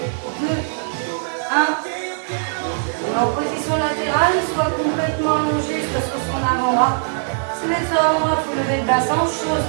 deux, un. En position latérale, soit complètement allongé, soit sur son avant-bras. Si vous êtes sur l'avant-bras, il faut lever le bassin, chose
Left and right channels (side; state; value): left; silent; digital silence